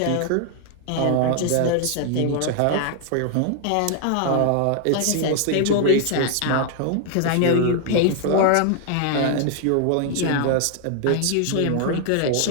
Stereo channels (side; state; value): both; different; correlation 0.00